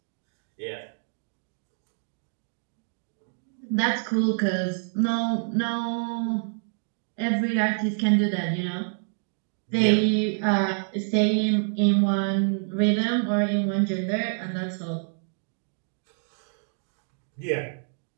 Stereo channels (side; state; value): left; silent; 60 dB below the other